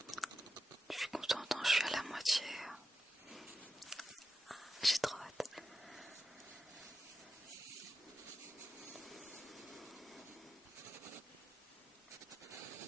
je suis contente, hein, je suis à la moitié. J'ai trop hâte.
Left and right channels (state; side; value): normal; both; correlation 0.87